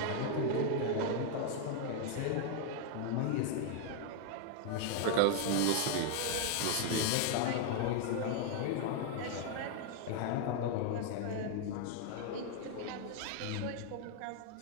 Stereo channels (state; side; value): different; both; correlation 0.00